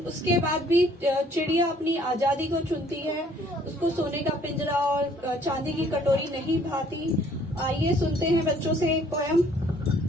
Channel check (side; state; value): both; normal; correlation 0.60